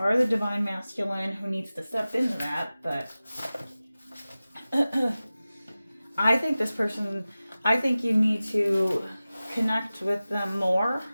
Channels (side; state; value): both; inverted; correlation -0.96